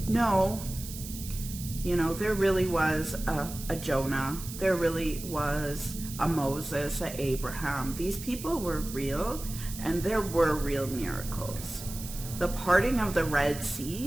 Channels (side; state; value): right; noise; hiss, 11 dB below the sound